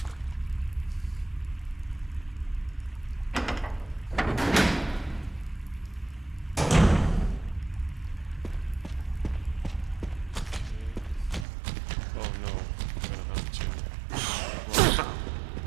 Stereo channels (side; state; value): left; drops out; at 11.5 s